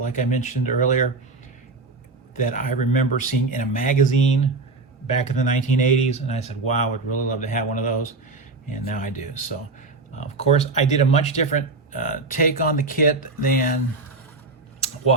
I mentioned earlier, that I remember seeing in a magazine back in the 1980s, and I said, wow, I would really love to have one of those, and now I do. So, of course, I did a much different take on the kit than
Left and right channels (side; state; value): left; quieter; 3.7 dB